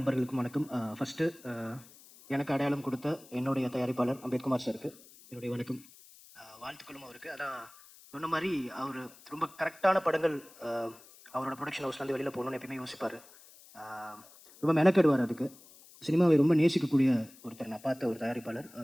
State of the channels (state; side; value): noise; left; hiss, 23 dB below the sound